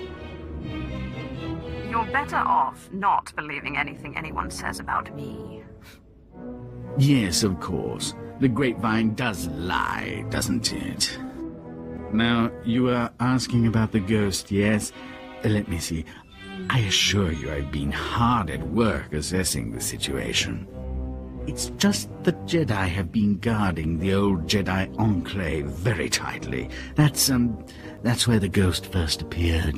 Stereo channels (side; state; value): both; identical; correlation 1.00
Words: You're better off not believing anything anyone says about me. Yes, of course. The grapevine does lie, doesn't it? Now, you are asking about the ghost, yes? Let me see. I assure you I've been hard at work assessing the situation. It's just the Jedi have been guarding the old Jedi Enclave very tightly. That's where the ghost first